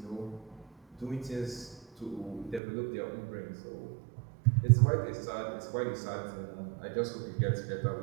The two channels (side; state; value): left; drops out; at 2.6 s